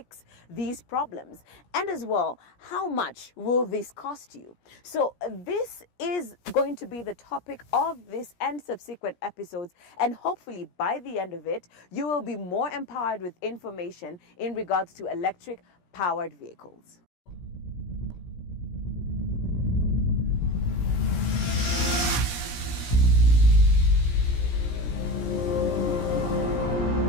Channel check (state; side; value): late; right; 17 ms